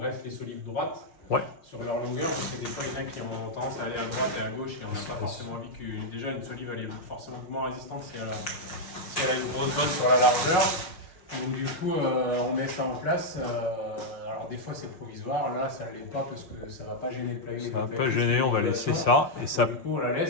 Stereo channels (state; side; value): late; right; 5.7 ms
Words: les solives droites. Ouais. Sur leur longueur, parce que des fois il y en a qui ont tendance à aller à droite et à gauche et on n'a pas forcément envie que déjà une solive elle est forcément moins résistante si elle a une grosse bosse sur la largeur. Donc du coup on met ça en place. Alors des fois c'est provisoire, là ça ne l'est pas parce que ça ne va pas gêner le plaving. Ça ne va pas gêner, on va laisser ça. Et ça... Du coup on la